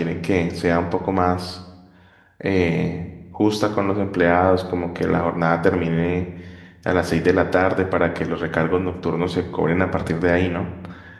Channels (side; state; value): both; identical; correlation 1.00